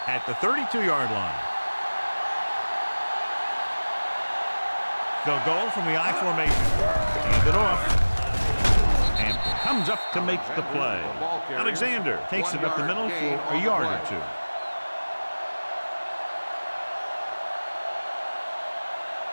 at the 32-yard line. They'll go from the I formation. Hand it off. And comes up to make the play. Alexander takes it up the middle for a yard or 2.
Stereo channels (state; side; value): inverted; both; correlation -1.00